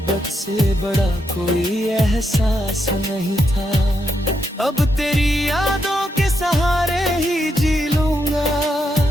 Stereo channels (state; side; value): normal; both; correlation 0.81